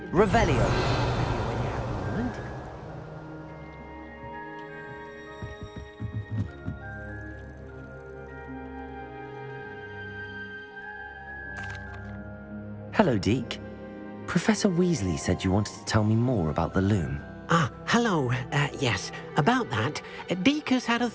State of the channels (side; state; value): both; identical; correlation 1.00